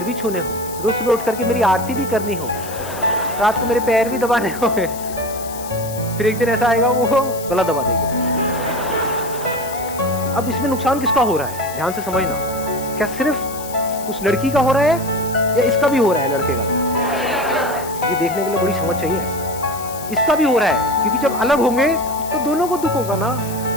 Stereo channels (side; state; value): left; noise; hiss, 13 dB below the sound